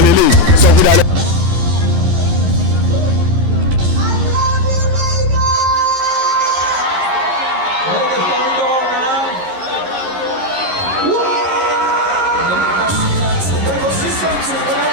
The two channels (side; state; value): left; late; 11 ms